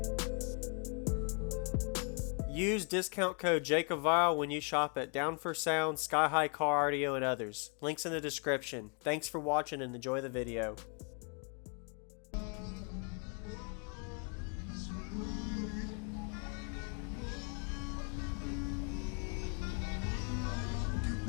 Use discount code JacobViral when you shop at Down for Sound, SkyHigh Car Audio, and others. Links in the description. Thanks for watching and enjoy the video.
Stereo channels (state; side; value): quieter; right; 38.0 dB